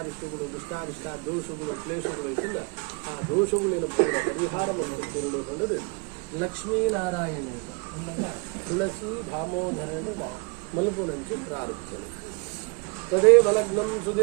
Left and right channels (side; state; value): left; quieter; 30.8 dB